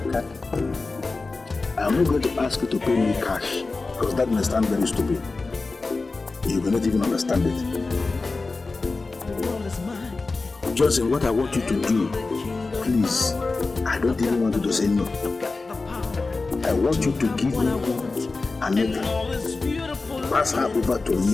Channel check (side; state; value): right; quieter; 3.7 dB